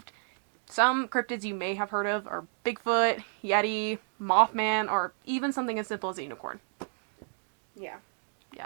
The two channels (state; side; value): silent; left; 57 dB below the other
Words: Some cryptids you may have heard of are Bigfoot, Yeti, Mothman, or even something as simple as a unicorn. Yeah.